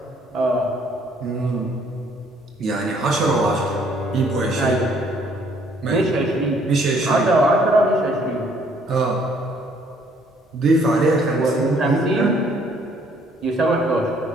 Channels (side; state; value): both; normal; correlation 0.63